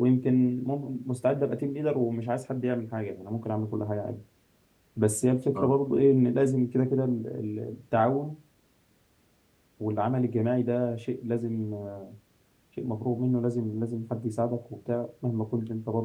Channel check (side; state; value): both; identical; correlation 1.00